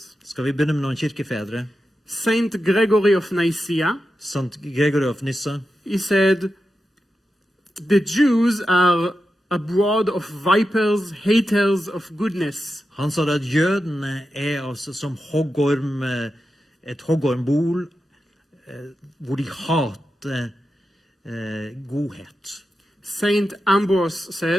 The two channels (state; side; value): normal; both; correlation 0.90